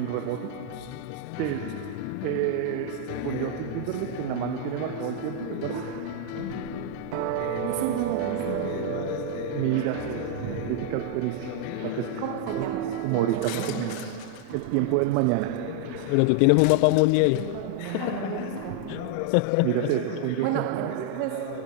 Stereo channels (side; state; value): both; different; correlation 0.00